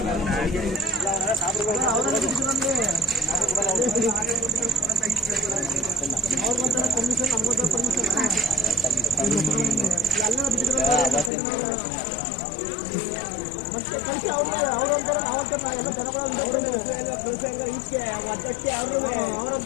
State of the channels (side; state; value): right; drops out; at 11.3 s